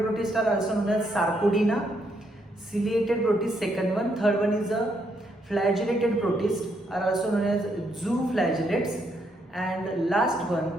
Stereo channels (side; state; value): both; normal; correlation 0.75